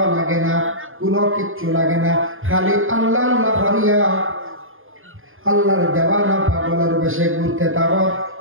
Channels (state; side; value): late; left; 0.59 ms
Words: লাগে না, কোনো কিচ্ছু লাগে না, খালি আল্লাহ আল্লাহ হরিয়া আল্লাহর দেওয়ানা পাগলের বেশে ঘুরতে থাকো